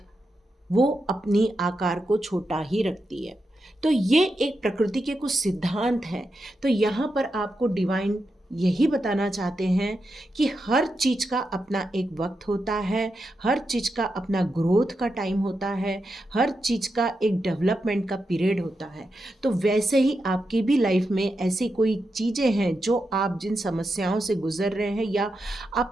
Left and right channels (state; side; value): normal; both; correlation 0.87